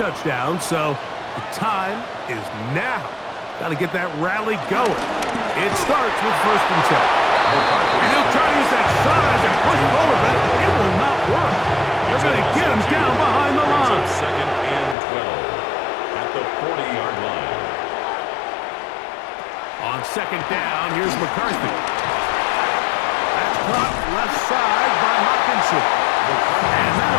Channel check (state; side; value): drops out; right; at 15.0 s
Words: so the time is now. Got to get that rally going. It starts with 1st and 10. And he'll try to use that size and push forward, but it will not work. They're going to get him down behind the line. 2nd and 12 at the 40-yard line. On 2nd down, here's McCarthy. That's caught left side by Hawkinson. And